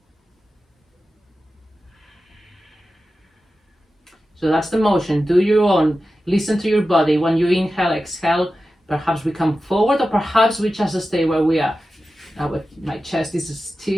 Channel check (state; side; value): normal; both; correlation 0.93